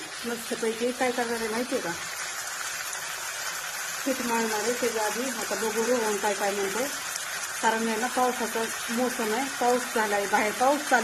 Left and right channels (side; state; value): both; identical; correlation 1.00